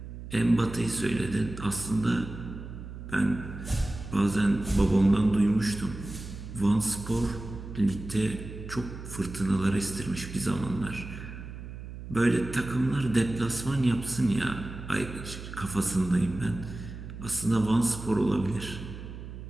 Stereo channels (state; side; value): noise; right; hum, 11 dB below the sound